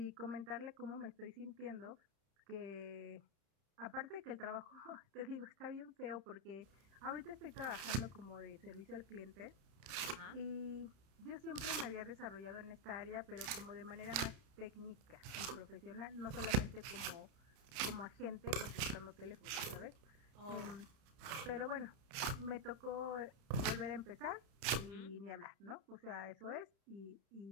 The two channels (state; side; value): late; left; 31 ms